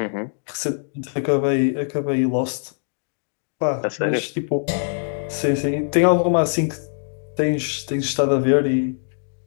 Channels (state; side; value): silent; right; 64 dB below the other